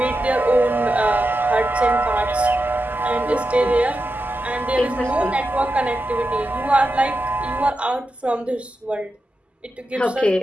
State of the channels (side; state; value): both; normal; correlation 0.89